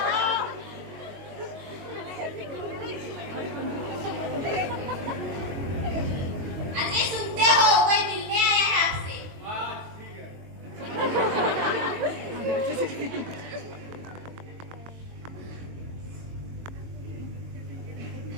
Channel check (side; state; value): left; late; 22 ms